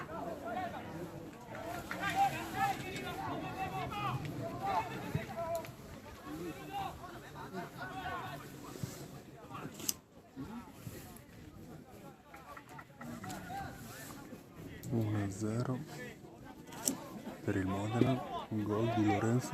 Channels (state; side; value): identical; both; correlation 1.00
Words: 1-0 per il Modena, un gol di